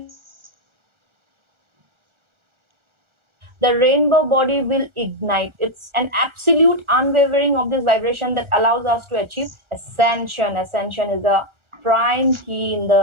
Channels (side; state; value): left; late; 1.4 ms